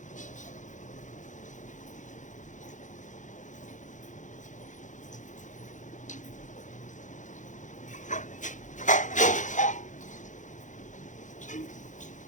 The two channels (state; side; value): late; right; 0.36 ms